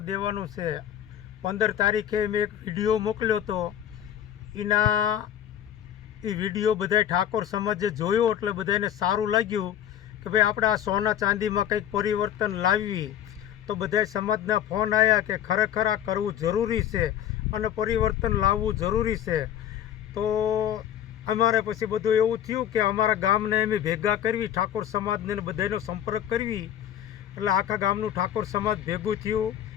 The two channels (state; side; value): quieter; right; 10.4 dB